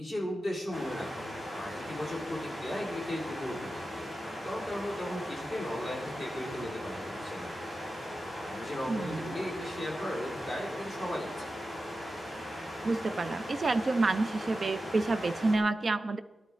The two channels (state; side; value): normal; both; correlation 0.92